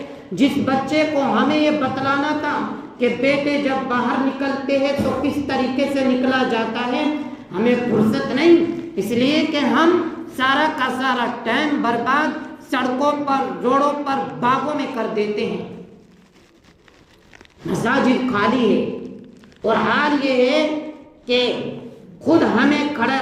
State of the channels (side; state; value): both; identical; correlation 1.00